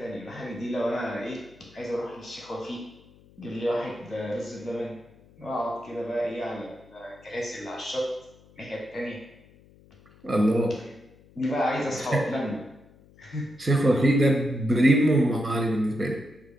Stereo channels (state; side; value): noise; left; hum, 26 dB below the sound